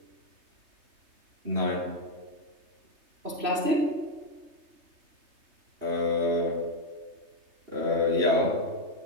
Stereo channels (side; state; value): left; late; 3.2 ms